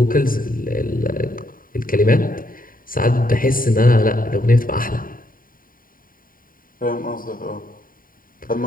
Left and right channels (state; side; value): late; right; 0.41 ms